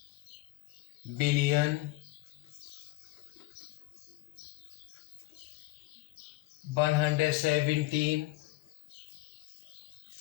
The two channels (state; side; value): quieter; right; 18.7 dB